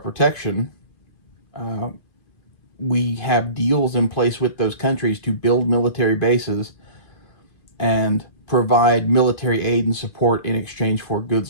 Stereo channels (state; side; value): late; right; 2.3 ms